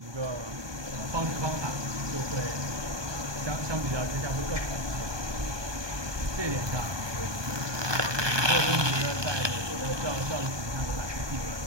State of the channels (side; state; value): left; late; 1.2 ms